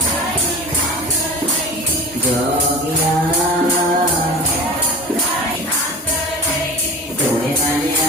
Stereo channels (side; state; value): both; normal; correlation 0.35